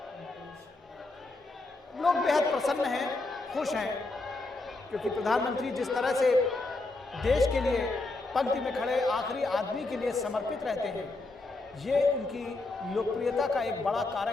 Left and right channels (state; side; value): quieter; right; 3.2 dB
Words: लोग बेहद प्रसन्न हैं, खुश हैं, क्योंकि प्रधानमंत्री जिस तरह से देश के लिए पंक्ति में खड़े आखिरी आदमी के लिए समर्पित रहते हैं, ये उनकी लोकप्रियता का एक बड़ा